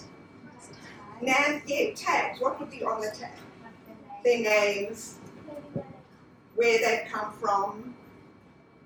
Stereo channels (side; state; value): both; identical; correlation 1.00